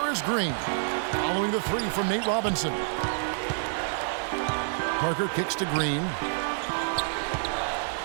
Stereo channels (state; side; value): silent; left; digital silence